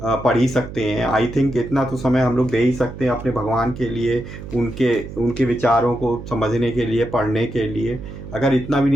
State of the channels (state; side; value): noise; right; hum, 12 dB below the sound